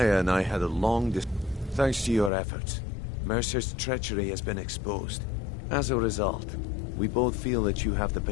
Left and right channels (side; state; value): right; drops out; at 2.3 s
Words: and I had a long Thanks to your efforts, Mercer's treachery has been exposed. As a result, we both feel that you have the